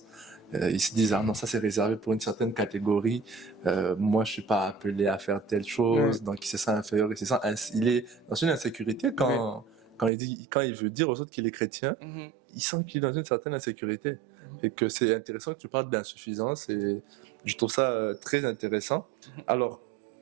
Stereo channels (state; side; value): drops out; left; at 10.1 s